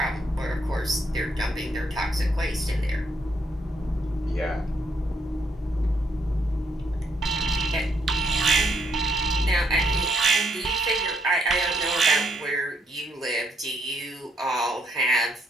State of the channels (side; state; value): both; normal; correlation 0.73